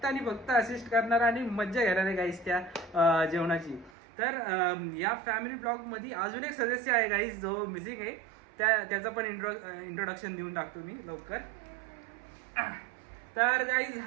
आणि फक्त असिस्ट करणार आणि मज्जा घेणार आहे गाईज त्या जेवणाची. तर या फॅमिली ब्लॉगमध्ये अजून एक सदस्य आहे गाईज जो मिसिंग आहे, त्याचं पण इंट्रोडक्शन देऊन टाकतो मी लवकर. तर गाईज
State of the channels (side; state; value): left; drops out; at 3.9 s